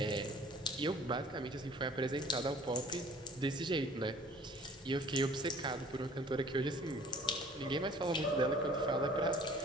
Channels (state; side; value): normal; both; correlation 0.51